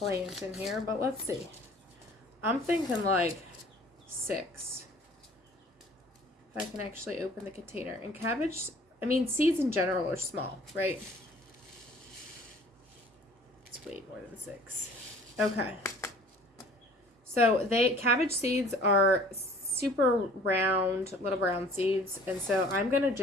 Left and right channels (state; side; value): normal; both; correlation 0.51